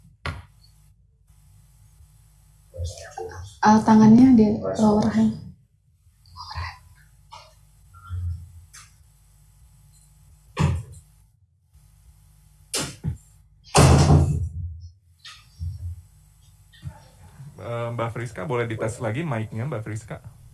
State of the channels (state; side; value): identical; both; correlation 1.00